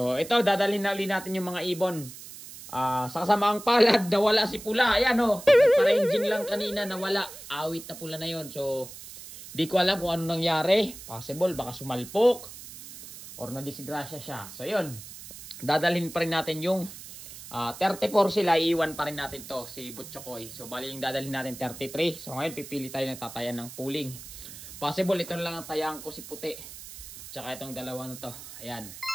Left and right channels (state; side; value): noise; right; hiss, 14 dB below the sound